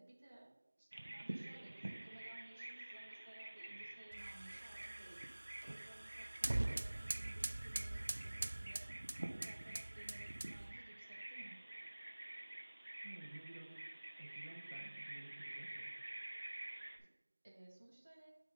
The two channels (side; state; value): both; inverted; correlation -1.00